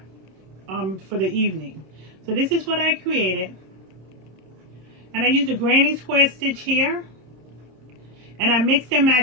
for the evening. So this is what I created, and I used a granny square stitch here, and I mixed and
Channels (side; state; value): left; late; 26 ms